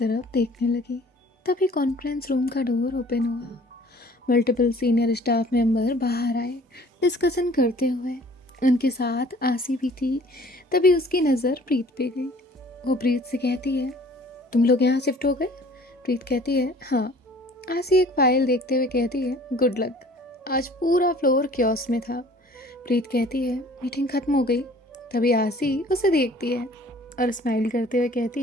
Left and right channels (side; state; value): both; normal; correlation 0.51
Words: देखने लगी। तभी कॉन्फ्रेंस रूम का डोर ओपन हुआ। मल्टीपल सीनियर स्टाफ मेंबर बाहर आए डिस्कशन करते हुए। उनके साथ आसी भी थी। तभी उसकी नज़र प्रीत पे गई। वो प्रीत से कहती है, तुम लोग यहाँ शिफ्ट हो गए? प्रीत कहती है, हाँ। आसी एक फाइल देखते हुए कहती है, गुड लक। आज पूरा फ्लोर क्योस में था। प्रीत कहती है, मीटिंग ख़त्म हो गई। तभी आसी उसे देखती है और स्माइल करते हुए